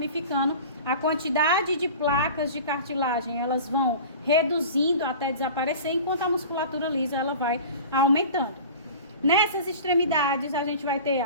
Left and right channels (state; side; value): inverted; both; correlation -0.38